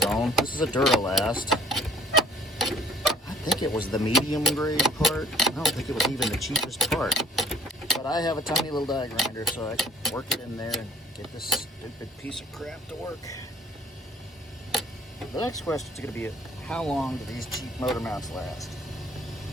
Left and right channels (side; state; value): both; normal; correlation 0.55